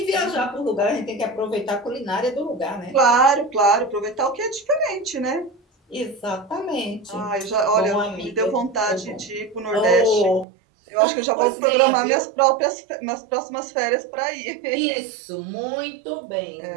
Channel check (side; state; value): left; drops out; at 10.5 s